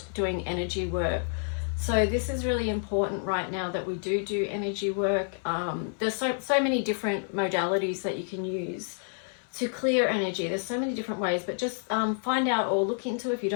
doing energy work. So this is really important right now that we do energy work. There's so many different modalities that you can use to clear energy. There's so many different ways, but just find out or look into, if you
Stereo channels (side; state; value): right; silent; 59 dB below the other